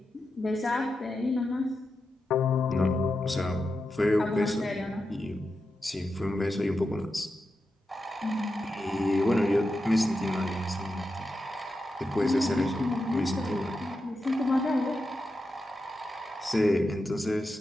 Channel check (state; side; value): normal; both; correlation 0.89